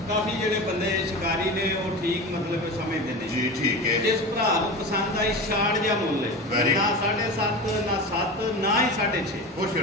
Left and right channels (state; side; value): normal; both; correlation 0.28